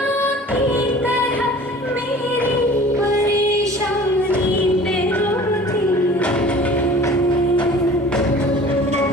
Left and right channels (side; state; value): both; normal; correlation 0.45